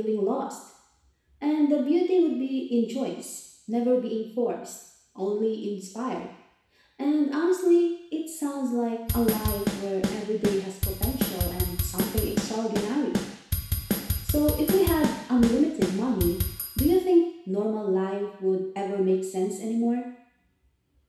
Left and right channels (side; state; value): both; identical; correlation 1.00